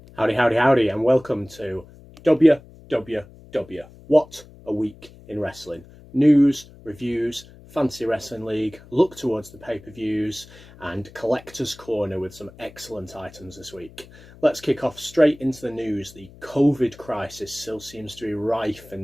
Howdy, howdy, howdy, and welcome to WWW. What a week in wrestling. News, reviews, Fantasy Wrestling League, look towards the pay-per-views, and Collector's Corner with some excellent items this week. Let's kick off straight into the news. The COVID crisis still seems to be rife in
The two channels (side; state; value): left; noise; hum, 21 dB below the sound